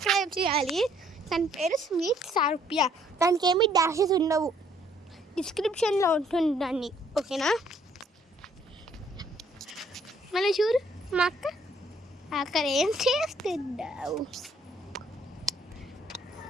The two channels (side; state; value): both; normal; correlation 0.65